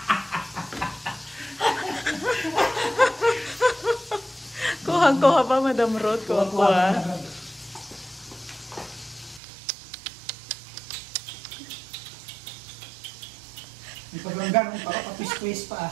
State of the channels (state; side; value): drops out; left; at 9.4 s